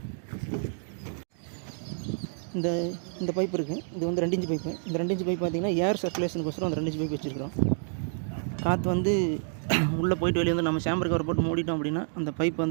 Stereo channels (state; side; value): silent; left; digital silence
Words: இந்த பைப் இருக்குது. இது வந்து 2 inch பைப்பு. இந்த 2 inch பைப் பார்த்திங்கன்னா ஏர் சர்க்குலேஷனுக்கோசரம் அந்த 2 inch பைப் வச்சுருக்கிறோம். காற்று வந்து உள்ளே போயிட்டு வெளியே வந்து நம்ம சாம்பர் கவர் போட்டு மூடிட்டோம் அப்படின்னா அந்த பைப்